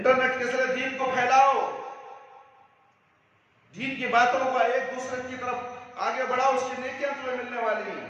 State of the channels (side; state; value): both; identical; correlation 1.00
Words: کے ذریعے دین کو پھیلاؤ، دین کی باتوں کو ایک دوسرے کی طرف آگے بڑھاؤ، اس کی نیکیاں تمہیں ملنے والی ہیں۔